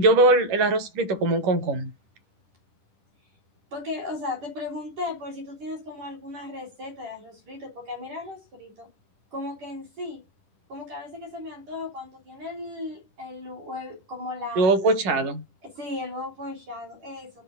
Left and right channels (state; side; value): late; left; 10 ms